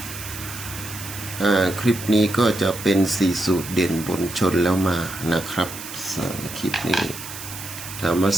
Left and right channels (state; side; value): noise; right; hiss, 11 dB below the sound